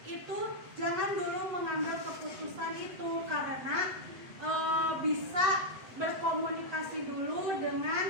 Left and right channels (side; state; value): left; late; 7.9 ms